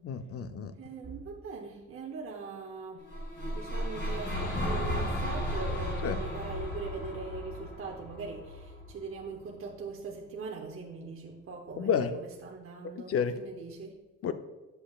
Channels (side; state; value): both; normal; correlation 0.25